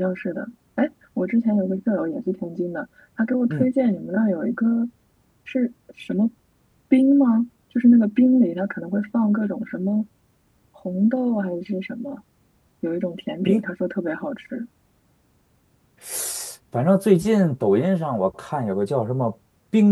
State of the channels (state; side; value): identical; both; correlation 1.00